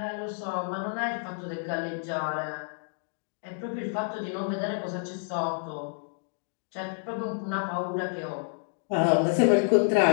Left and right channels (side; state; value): right; silent; 59 dB below the other